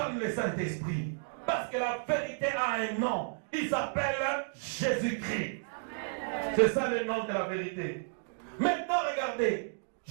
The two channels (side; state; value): left; silent; digital silence